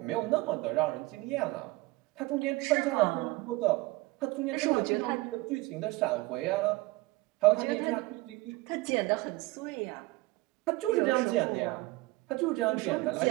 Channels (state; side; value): quieter; left; 21.3 dB